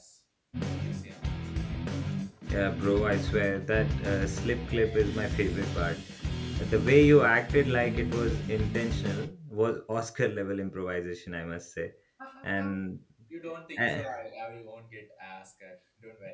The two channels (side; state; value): both; identical; correlation 1.00